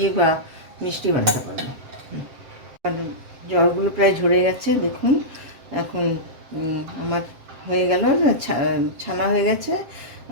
বা মিষ্টি বানাতে পারবো। আর জলগুলো প্রায় ঝরে গেছে দেখুন। এখন আমার হয়ে গেল, ছানা হয়ে গেছে।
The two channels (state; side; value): late; left; 7.5 ms